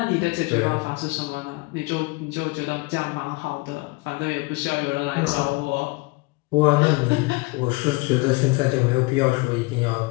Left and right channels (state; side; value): quieter; right; 25.5 dB